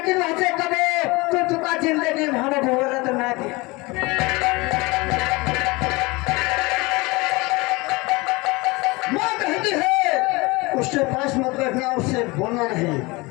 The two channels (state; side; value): quieter; right; 24.1 dB